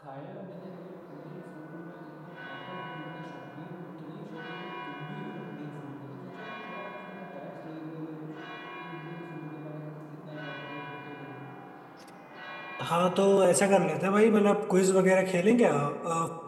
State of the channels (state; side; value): identical; both; correlation 1.00